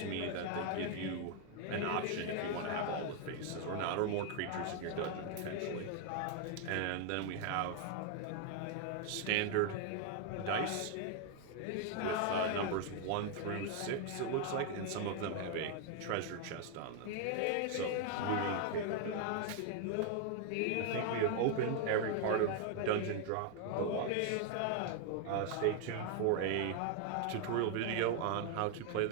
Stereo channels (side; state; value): both; different; correlation 0.00